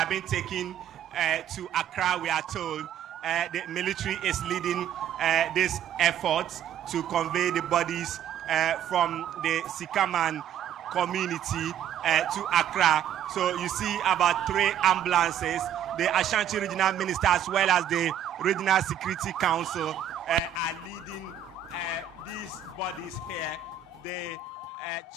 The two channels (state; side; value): quieter; left; 9.4 dB